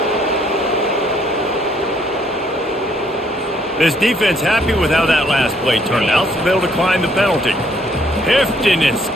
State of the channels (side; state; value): both; normal; correlation 0.66